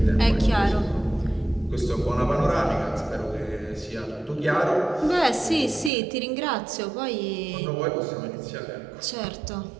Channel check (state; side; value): drops out; left; at 5.9 s